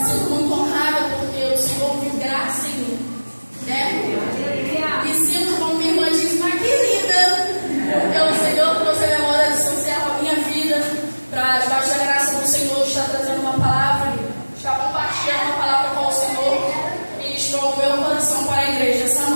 sinto muito honrada porque o Senhor viu graça em mim, né? Me sinto, como minha irmã disse, uma querida. Porque o Senhor trouxe a memória de São Servo a minha vida para, debaixo da graça do Senhor, estar trazendo uma palavra, estar compartilhando uma palavra com o Senhor e ministrou o meu coração para a igreja essa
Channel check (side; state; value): both; inverted; correlation -1.00